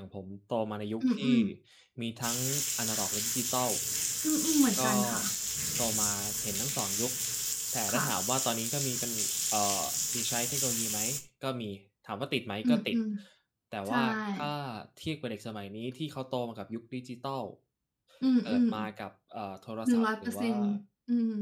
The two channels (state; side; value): identical; both; correlation 1.00